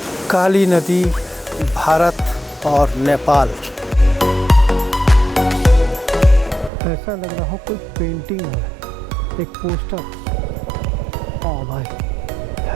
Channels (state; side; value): drops out; left; at 6.7 s